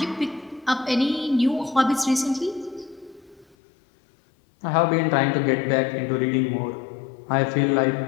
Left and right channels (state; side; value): drops out; right; at 3.6 s